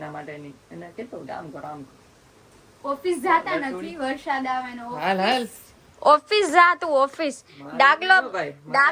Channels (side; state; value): both; identical; correlation 1.00